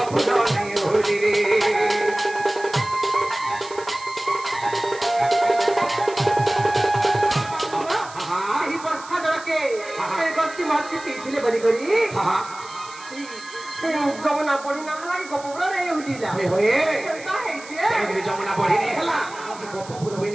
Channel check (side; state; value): right; noise; hiss, 18 dB below the sound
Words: नहीं होली रे मार्केट पीथिले बनी करी हां जमुना पड़ी ना हला की गपपुरा रे होलीला हे होए का है जे तेरे जमुना पड़ी नहीं हला कि गपपुरा भी